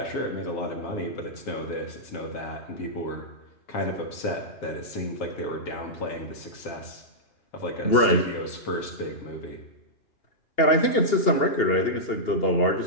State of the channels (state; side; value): late; right; 2.8 ms